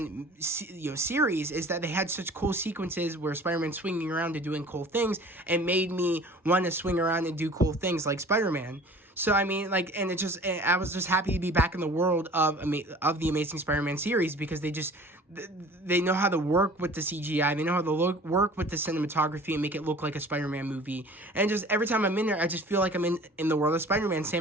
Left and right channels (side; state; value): both; normal; correlation 0.46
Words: series, is that they had such cool sequences where Spider-Man's swinging around and doing cool things, and made me want to swing around and do cool things like Spider-Man. So I mean, I was just happy to be back in the world of the Amazing Spider-Man series, because they know how to work with the CGI, they know how to work with the cinematography and make it look like a Spider-Man movie. And just every time I'm in there, I just feel like I'm in the world of Spider-Man.